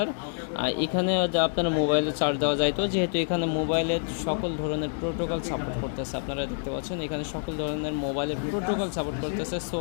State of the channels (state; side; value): silent; right; digital silence